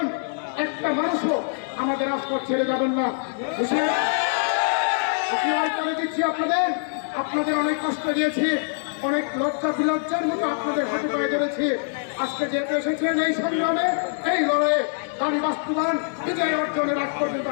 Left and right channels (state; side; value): silent; right; digital silence